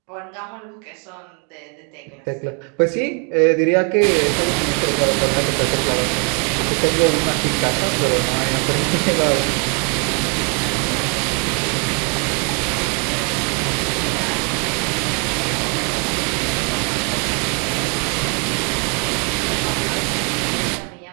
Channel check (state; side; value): quieter; left; 35.9 dB